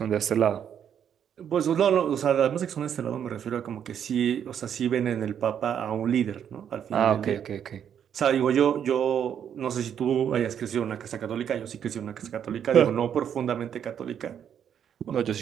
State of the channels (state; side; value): quieter; left; 8.8 dB